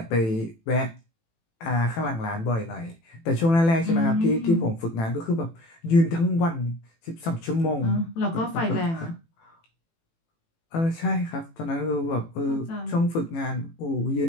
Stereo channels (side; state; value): right; late; 18 ms